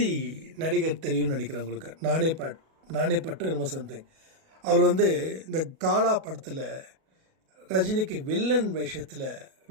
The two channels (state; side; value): late; left; 37 ms